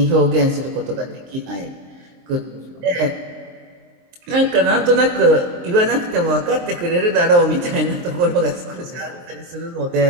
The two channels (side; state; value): left; late; 23 ms